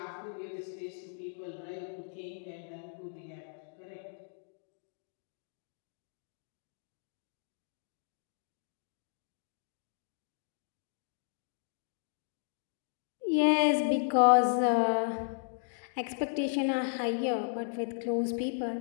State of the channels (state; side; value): silent; right; digital silence